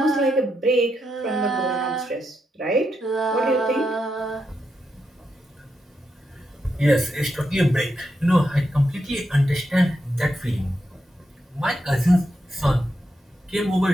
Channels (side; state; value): both; normal; correlation 0.84